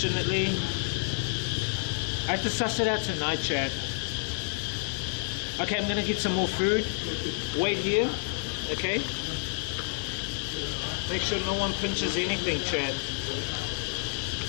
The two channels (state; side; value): silent; right; digital silence